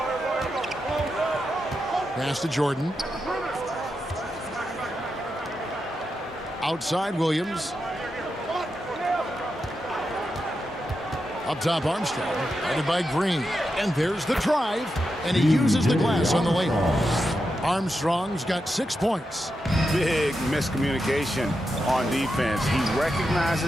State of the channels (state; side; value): normal; both; correlation 0.87